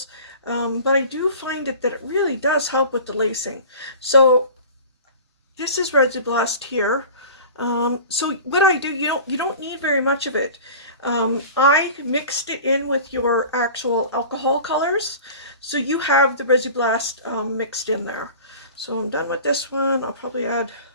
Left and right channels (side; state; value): both; inverted; correlation -0.39